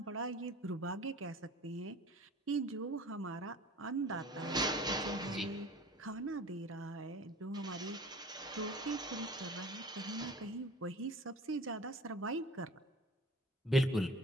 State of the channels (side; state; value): both; normal; correlation 0.44